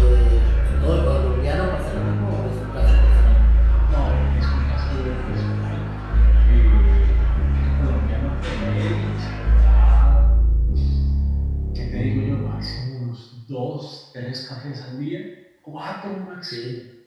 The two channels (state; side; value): identical; both; correlation 1.00